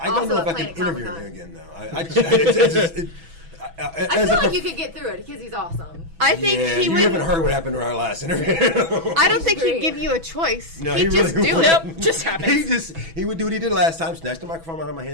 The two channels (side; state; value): left; late; 6.1 ms